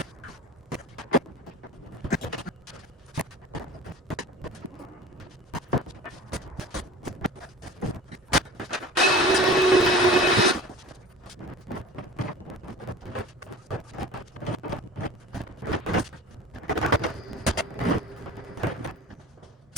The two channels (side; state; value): both; normal; correlation 0.39